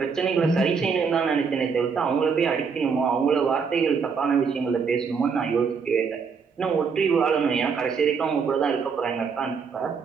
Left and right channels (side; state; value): left; quieter; 5.7 dB